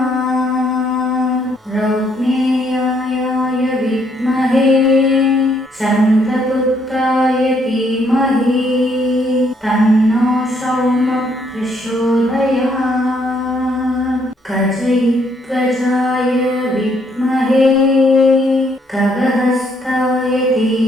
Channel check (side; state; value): both; normal; correlation 0.70